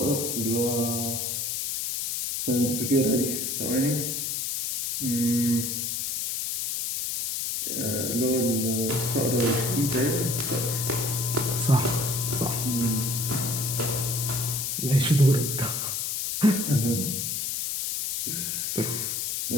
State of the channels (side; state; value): left; noise; hiss, 1 dB below the sound